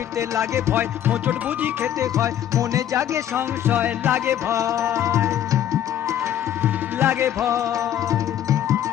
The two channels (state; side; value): quieter; right; 10.9 dB